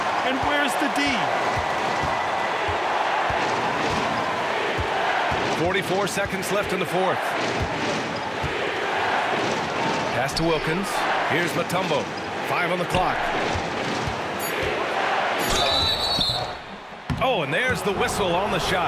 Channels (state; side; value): identical; both; correlation 1.00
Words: And where's the D? 44 seconds left in the fourth. Pass to Wilkins. Here's Mutombo. 5 on the clock. Oh, and there's the whistle on the